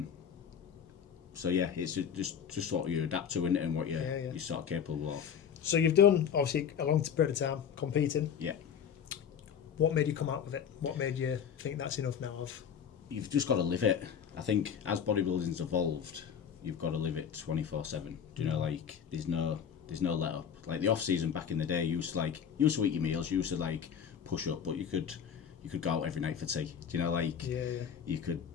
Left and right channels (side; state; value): right; quieter; 7.9 dB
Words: So it's just what you adapt to, isn't it, and what you're sort of capable of. So you've done obviously a long period of time competing. Yeah. What made you come out with it? What made you think that's enough now? You've just got to live it. I think as bodybuilding's evolved, you've got to live it 24/7. Do you know, like there's no let up. Like the off season back in the day, you used to eat your meals, you used to like push up, but you could go out every night for tea. Do you know, like you could.